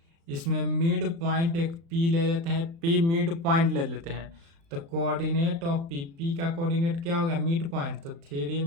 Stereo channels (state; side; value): late; left; 36 ms